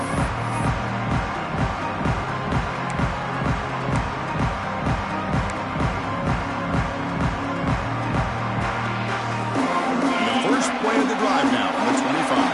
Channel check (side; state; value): both; identical; correlation 1.00